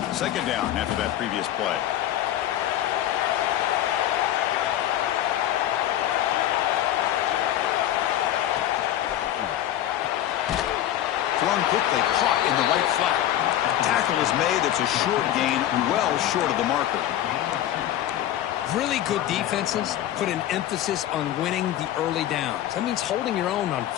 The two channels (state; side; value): quieter; right; 12.4 dB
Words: Second down after that previous play. thrown quickly, caught in the right flat. Tackle is made. It's a short gain, well short of the marker. Really good defenses put an emphasis on winning the early downs. That means holding your own on